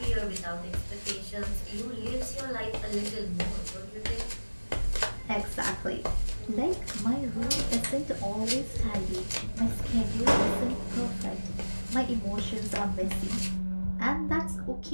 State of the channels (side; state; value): both; inverted; correlation -1.00